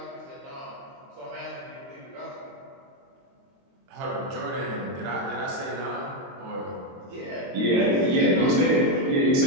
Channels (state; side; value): late; left; 22 ms